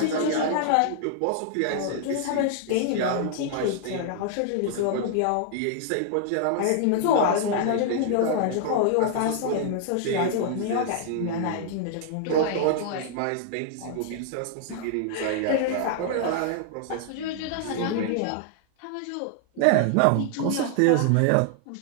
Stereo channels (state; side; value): different; both; correlation -0.01